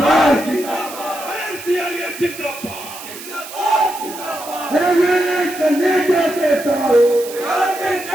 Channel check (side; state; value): right; noise; hiss, 13 dB below the sound